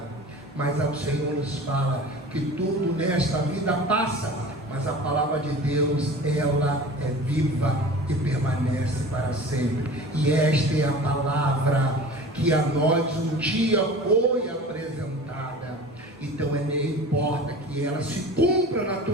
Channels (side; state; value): both; normal; correlation 0.39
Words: Mas o Senhor nos fala que tudo nesta vida passa, mas a palavra de Deus, ela é viva e permanece para sempre. E esta é a palavra que a nós um dia foi apresentada. Então não importa que ela se cumpra na